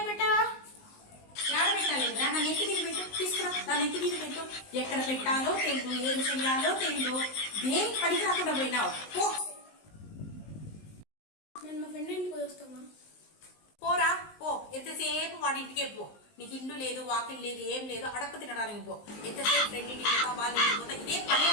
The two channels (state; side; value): late; right; 19 ms